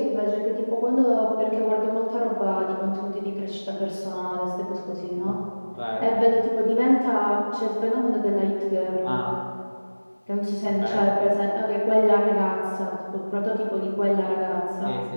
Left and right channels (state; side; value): inverted; both; correlation -1.00